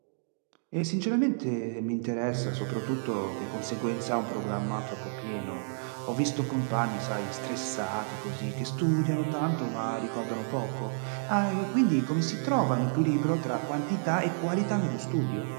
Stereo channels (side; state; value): left; silent; digital silence